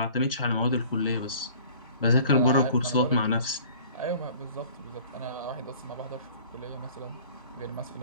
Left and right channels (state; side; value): inverted; both; correlation -0.49